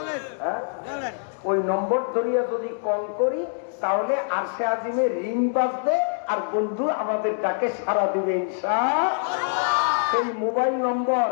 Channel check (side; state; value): right; silent; digital silence